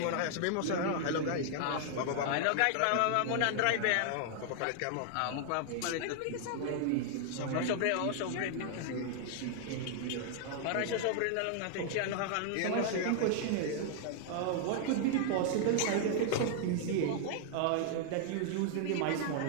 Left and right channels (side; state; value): both; different; correlation 0.00